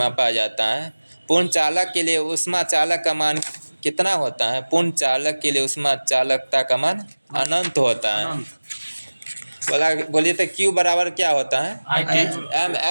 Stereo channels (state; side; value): inverted; both; correlation -1.00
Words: जाता है। पूर्ण चालक के लिए ऊष्मा चालक का मान कितना होता है? पूर्ण चालक के लिए ऊष्मा चालकता का मान अनंत होता है। बोलिए तो Q बराबर क्या होता है?